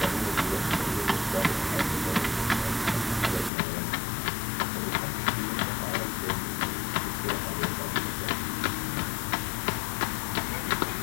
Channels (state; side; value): drops out; right; at 3.5 s